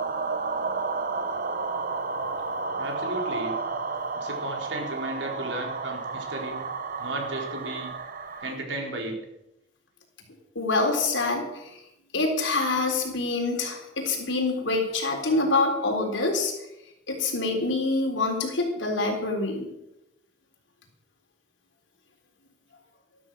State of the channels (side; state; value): both; normal; correlation -0.09